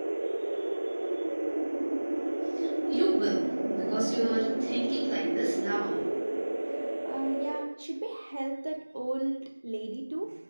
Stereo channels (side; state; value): both; inverted; correlation -1.00